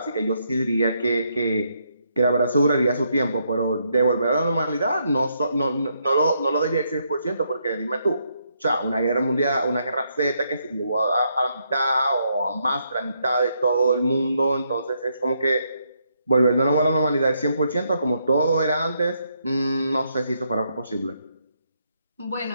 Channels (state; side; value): inverted; both; correlation -0.76